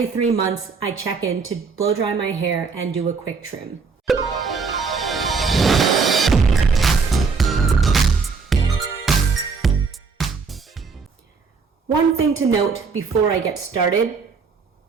3 months I check in to blow dry my hair and do a quick trim. One thing to note before I get started:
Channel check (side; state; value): left; quieter; 4.9 dB